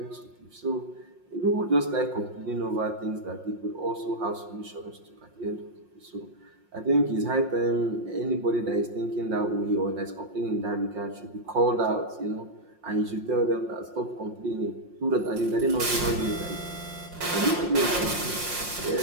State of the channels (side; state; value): left; late; 5.6 ms